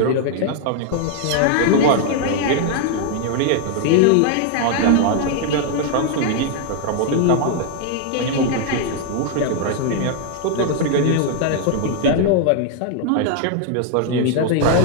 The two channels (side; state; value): both; different; correlation 0.00